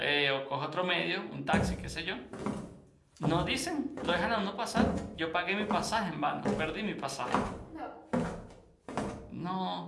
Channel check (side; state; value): both; identical; correlation 1.00